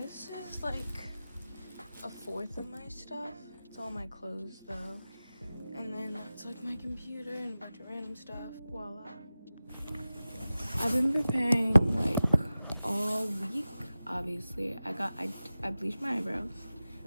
is like a fourth of my stuff. It's all my clothes though. And then that's like my computer and a bunch of random stuff. Voila. I've been preparing like all week, obviously. I bleached my eyebrows.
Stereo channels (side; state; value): both; inverted; correlation -0.95